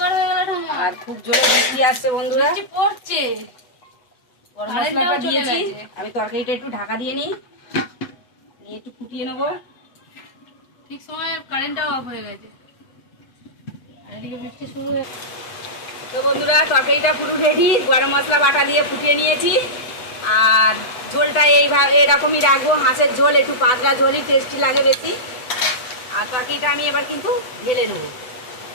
হয়ে গেল আর খুব জোরে বৃষ্টি আসছে বন্ধুরা, পড়ছে। গরম মশলাটা দিয়েছি। আমি তরকারিটা একটু ঢাকা দিয়ে নিই, নিয়ে একটু ফুটিয়ে নেবো। ঠিক সময় কারেন্টটাও অফ হয়ে গেছে আর এদিকে বৃষ্টি শুরু হয়ে। তো বন্ধুরা তরকারিটা পুরো রেডি, গরম মশলা বাটা দিয়ে ফুটিয়ে নিয়েছি। আর ঝোলটা এইভাবে এরকমই রাখবো, হাঁসের ঝোল একটু পাতলা ঝোলই টেস্টি লাগে বেশি। আর তরকারিটা আমি এবার কিন্তু ঢেলে নেবো।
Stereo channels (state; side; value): late; right; 8.0 ms